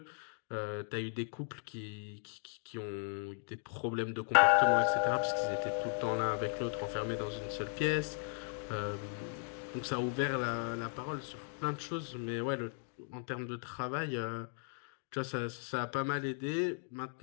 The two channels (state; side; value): silent; right; 53 dB below the other